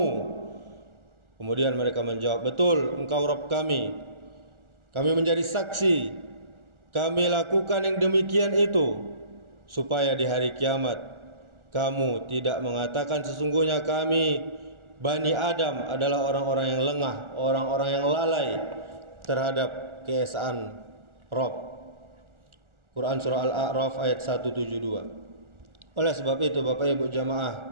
Kemudian mereka menjawab, betul, engkau Rabb kami. Kami menjadi saksi, kami lakukan yang demikian itu, supaya di hari kiamat kamu tidak mengatakan sesungguhnya kami Bani Adam adalah orang-orang yang lengah, orang-orang yang lalai terhadap keesaan Rabb. Quran surah Al-A'raf ayat 172. Oleh sebab itu Bapak Ibu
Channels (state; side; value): late; left; 1.4 ms